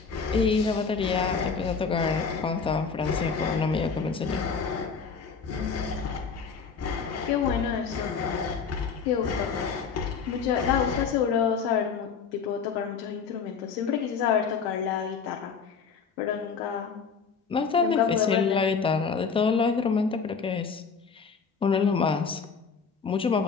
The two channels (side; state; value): right; quieter; 5.7 dB